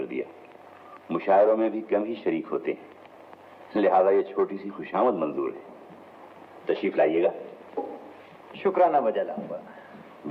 दिया। मुशायरों में भी कम ही शरीक होते हैं, लिहाजा ये छोटी सी खुशामद मंजूर है। तशरीफ लाइएगा। शुक्राना बजा लाऊंगा।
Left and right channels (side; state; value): both; identical; correlation 1.00